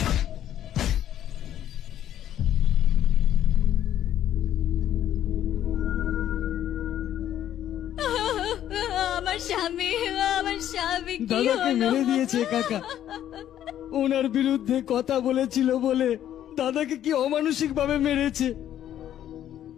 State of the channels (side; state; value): right; quieter; 11.2 dB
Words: আমার স্বামী, আমার স্বামী কি দাদাকে হলো? মেরে দিয়েছে কাকা। ওনার বিরুদ্ধে কথা বলেছিল বলে দাদাকে কি অমানসিক ভাবে মেরেছে।